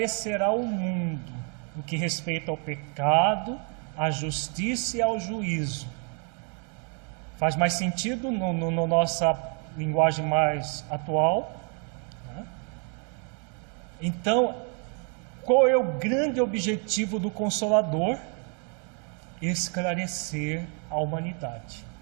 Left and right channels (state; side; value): quieter; left; 39.7 dB